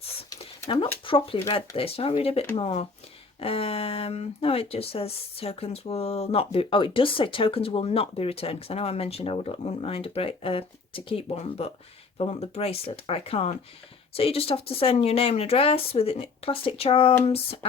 Now I've not properly read this. Shall I read a bit more? No, it just says tokens will not be, oh, it does say tokens will not be returned, because I know I mentioned I wouldn't mind to keep one, but if I want the bracelet I can't. So you just have to send your name and address with plastic charms,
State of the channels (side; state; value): right; quieter; 4.4 dB